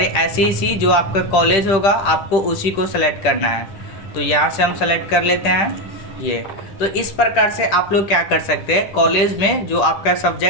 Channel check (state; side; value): late; right; 10 ms